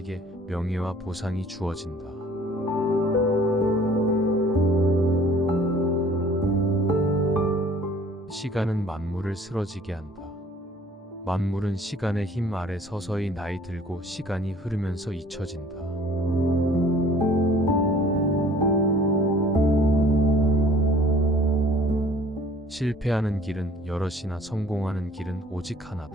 명예와 보상이 주어진다. 시간은 만물을 쓰러지게 한다. 만물은 시간의 힘 아래 서서히 나이 들고 시간이 흐르면서 잊혀진다. 실패하는 길은 여럿이나 성공하는 길은 오직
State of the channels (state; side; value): normal; both; correlation 0.52